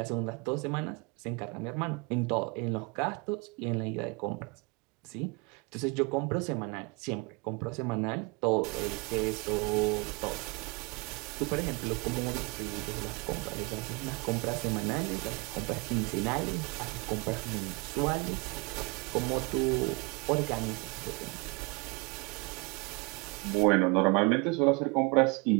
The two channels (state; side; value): quieter; left; 27.8 dB